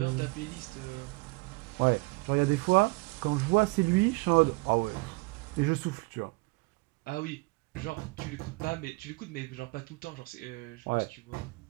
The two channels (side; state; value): left; quieter; 27.3 dB